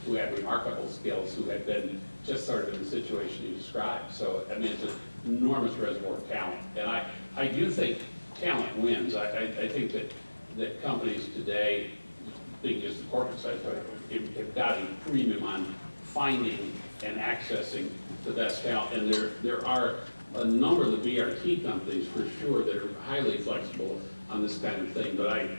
who had remarkable skills, who had been just sort of in the situation you described. So, I mean, it's an enormous reservoir of talent. And I do think talent wins. I think that companies today, being just the corporate side, have got a premium on finding and accessing the best talent. And there are a number of the BRT companies, for sure, that are highly flexible on this kind of thing. But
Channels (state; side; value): inverted; both; correlation -1.00